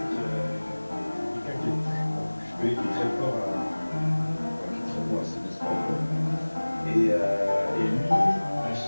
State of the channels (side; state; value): both; inverted; correlation -1.00